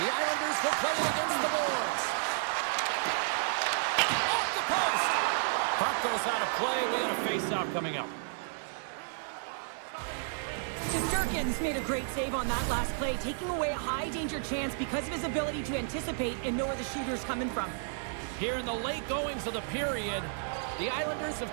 Islanders will play it against the boards. Off the post. Puck goes out of play. We had a face-off coming up. Shesterkin's made a great save on that last play, taking away a high-danger chance because of his ability to anticipate and know where the shooter's coming from. Here in the late goings of the period, the Islanders have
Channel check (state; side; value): silent; left; digital silence